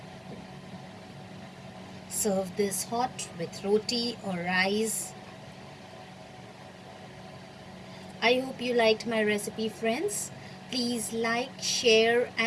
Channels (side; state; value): both; identical; correlation 1.00